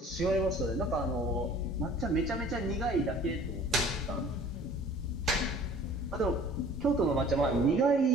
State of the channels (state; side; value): normal; both; correlation 0.49